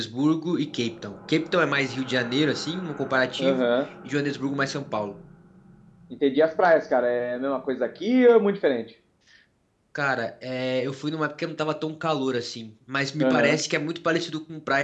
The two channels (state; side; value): identical; both; correlation 1.00